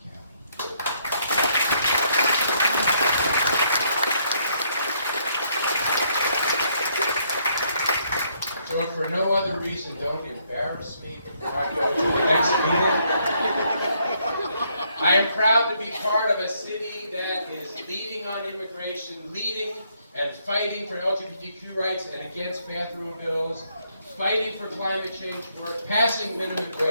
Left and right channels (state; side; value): inverted; both; correlation -0.71